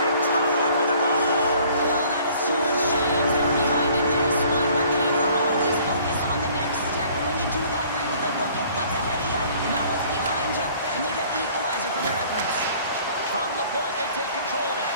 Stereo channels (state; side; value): inverted; both; correlation -0.55